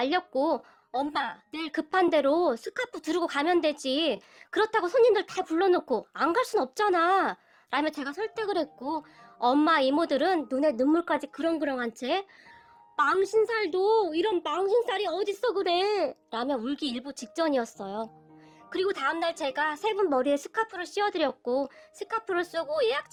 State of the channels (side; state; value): both; identical; correlation 1.00